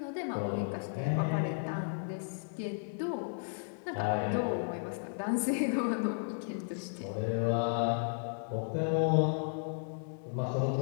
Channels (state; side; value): silent; right; 55 dB below the other